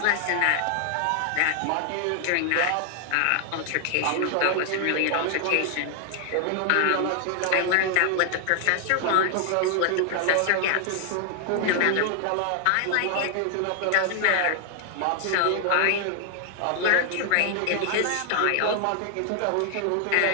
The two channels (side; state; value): both; different; correlation 0.00